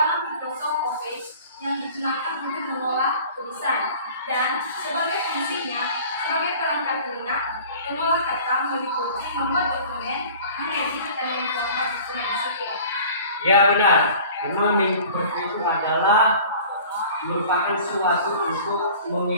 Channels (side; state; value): both; inverted; correlation -0.45